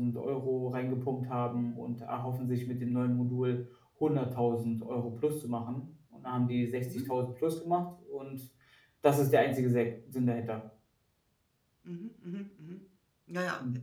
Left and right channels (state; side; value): identical; both; correlation 1.00